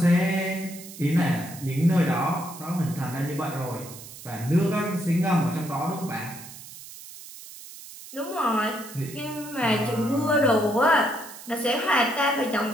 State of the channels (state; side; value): noise; right; hiss, 15 dB below the sound